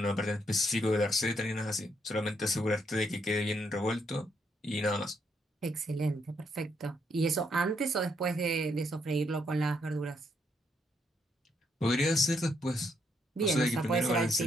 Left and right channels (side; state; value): both; normal; correlation 0.75